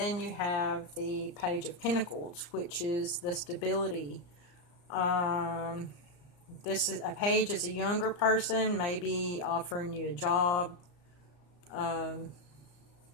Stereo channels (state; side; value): late; right; 34 ms